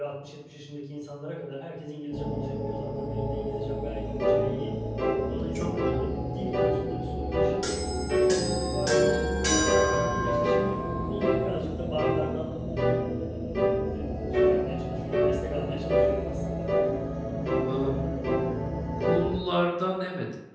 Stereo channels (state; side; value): identical; both; correlation 1.00